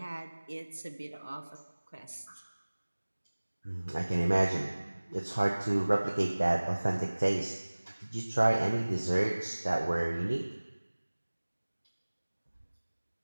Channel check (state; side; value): inverted; both; correlation -1.00